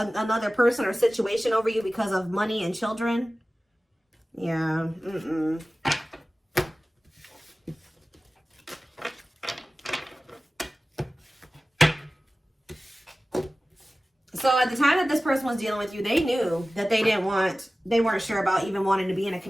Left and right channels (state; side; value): normal; both; correlation 0.97